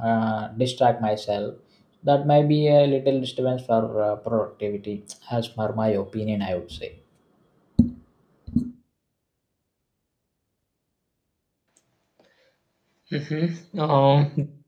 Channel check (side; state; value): both; identical; correlation 1.00